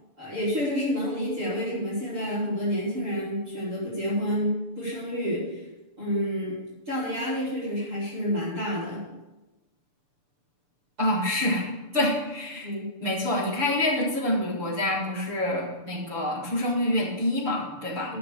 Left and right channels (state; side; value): late; left; 6.9 ms